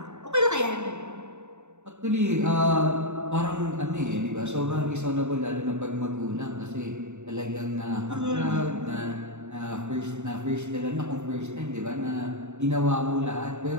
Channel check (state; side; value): late; left; 0.83 ms